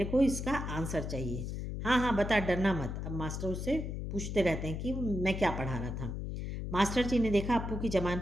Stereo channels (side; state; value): left; noise; hum, 5 dB below the sound